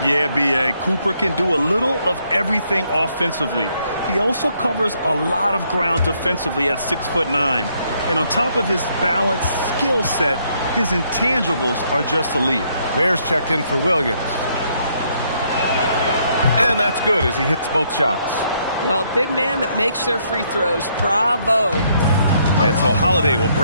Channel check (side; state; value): both; inverted; correlation -0.71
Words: Yeah, B.A. Cooper can do a little of everything offensively. He also covers a lot of ground defensively at 6'9". And on top of his balanced skill set, his intangibles are just elite. Ware's checked in for Williams. And that's good as he hits both shots. Well, big man that makes their free throws. Bravo. And so Holiday will